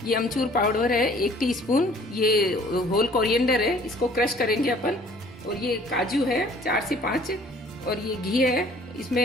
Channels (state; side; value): normal; both; correlation 0.54